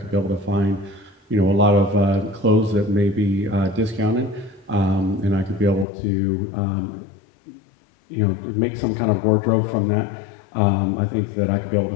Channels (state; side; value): drops out; right; at 5.9 s